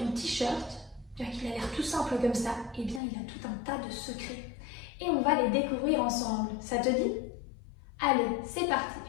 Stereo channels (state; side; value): drops out; right; at 3.0 s